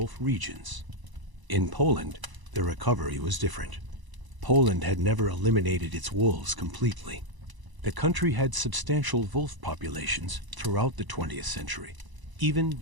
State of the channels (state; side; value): late; left; 1.0 ms